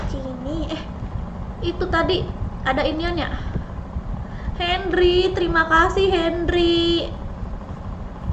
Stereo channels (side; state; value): both; identical; correlation 1.00